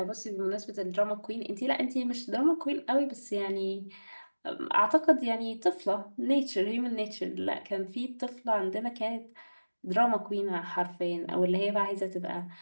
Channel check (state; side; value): inverted; both; correlation -1.00